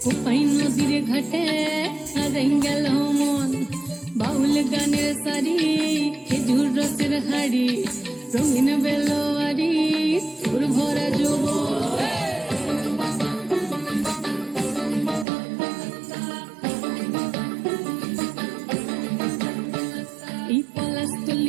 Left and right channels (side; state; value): left; drops out; at 15.2 s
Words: কোপাই নদীর ঘাটে হারাই গেল মন বাউল গানের সারি খেজুর রসের হাড়ি রঙিন বেলোয়ারি তোর ভরা যৌবন এই